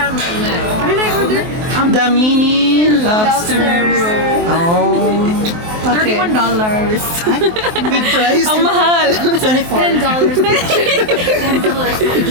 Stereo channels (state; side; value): late; left; 23 ms